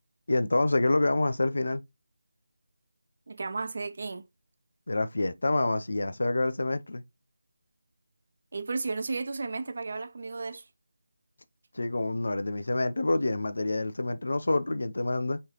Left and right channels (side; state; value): both; inverted; correlation -0.97